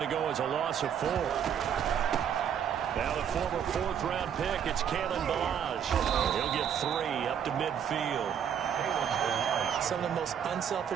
to go as a loss of 4. Now the former 4th-round pick, it's Kalen Ballage. He'll get 3 up to midfield. Some of the most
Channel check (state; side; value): quieter; left; 8.5 dB